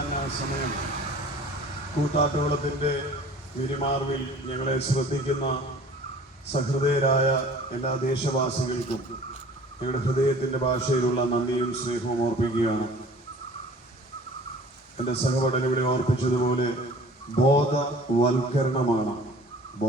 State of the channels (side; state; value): both; normal; correlation 0.47